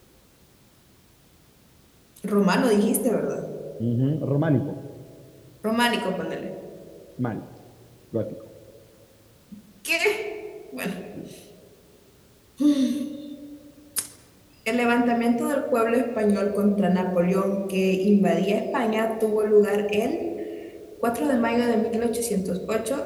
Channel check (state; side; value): identical; both; correlation 1.00